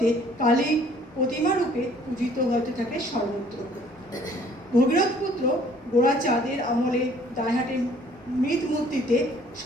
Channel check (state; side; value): normal; both; correlation 0.57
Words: কালী প্রতিমা রূপে পূজিত হতে থাকে সর্বত্র। ভগীরথ পুত্র গোড়াচাঁদের আমলে দাইহাটের মৃৎ মূর্তিতে